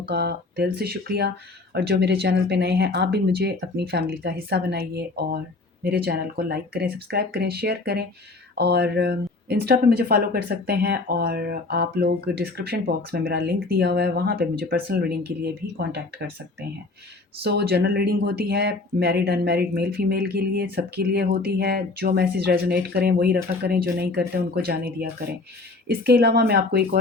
का दिल से शुक्रिया। और जो मेरे चैनल पे नए हैं, आप भी मुझे अपनी फैमिली का हिस्सा बनाइए और मेरे चैनल को लाइक करें, सब्सक्राइब करें, शेयर करें और इंस्टा पे मुझे फॉलो कर सकते हैं। और आप लोग डिस्क्रिप्शन बॉक्स में मेरा लिंक दिया हुआ है, वहाँ पे मुझे पर्सनल रीडिंग के लिए भी कांटेक्ट कर सकते हैं। जनरल रीडिंग होती है मैरिड अनमैरिड मेल फीमेल के लिए, सबके लिए होती है। जो मैसेज रेजोनेट करें वही रखा करें, जो नहीं करते उनको जाने दिया करें। इसके अलावा मैं आपको एक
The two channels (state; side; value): quieter; right; 3.4 dB